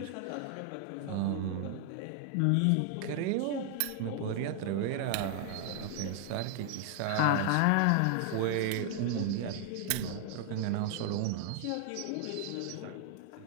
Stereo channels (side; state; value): both; different; correlation 0.00